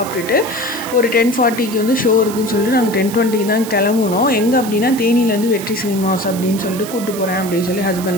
ஒரு 10:40க்கு வந்து ஷோ இருக்குதுன்னு சொல்லிட்டு நாங்கள் 10:20க்கு தான் கிளம்புனோம். எங்கே அப்படின்னா தேனியில் வந்து வெற்றி சினிமாஸ் அப்படின்னு சொல்லிட்டு கூப்பிட்டு போகிறேன் அப்படின்னு சொல்லி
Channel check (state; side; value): noise; right; hiss, 12 dB below the sound